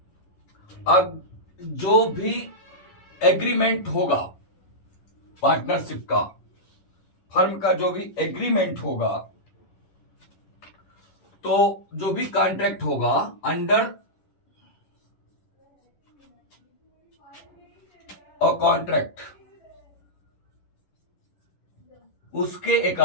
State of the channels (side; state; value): right; late; 10 ms